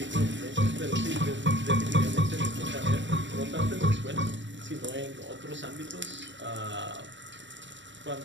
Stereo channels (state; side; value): late; left; 0.53 ms